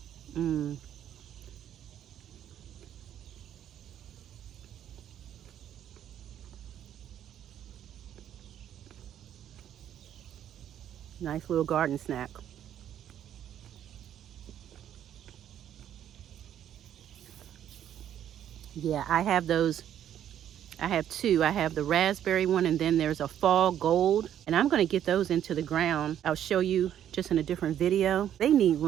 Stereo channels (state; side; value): quieter; left; 10.5 dB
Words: Mmm. Nice little garden snack. Yeah, I have those. I have 2. I have the raspberry one, and then there's a fall gold. And I'm going to get those into the ground. I'll show you just in a different video. They need